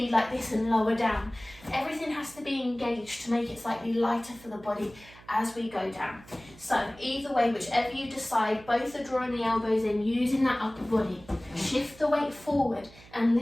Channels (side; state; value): right; noise; hum, 22 dB below the sound